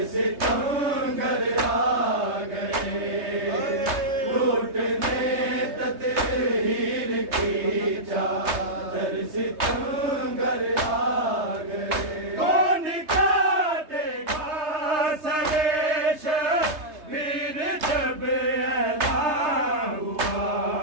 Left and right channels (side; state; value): left; late; 3.3 ms